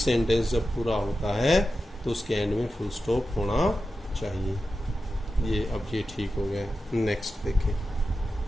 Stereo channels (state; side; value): normal; both; correlation 0.92